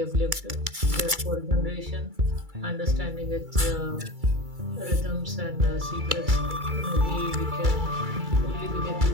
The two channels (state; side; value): late; left; 2.3 ms